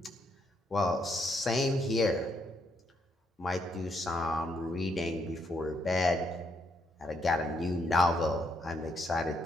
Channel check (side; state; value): both; normal; correlation 0.75